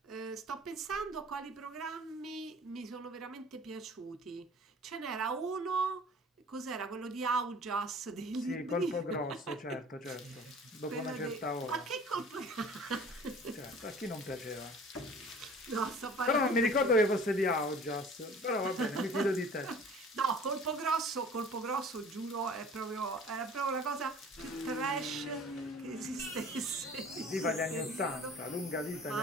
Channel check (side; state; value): both; normal; correlation 0.46